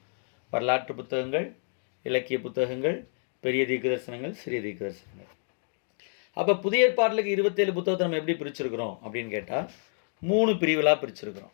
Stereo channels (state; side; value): silent; right; 59 dB below the other